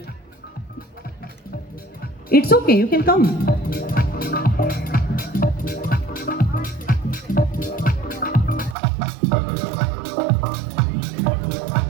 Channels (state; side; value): drops out; left; at 8.8 s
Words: It's okay, you can come.